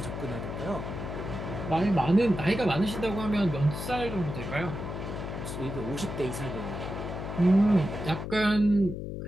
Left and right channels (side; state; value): left; noise; hum, 6 dB below the sound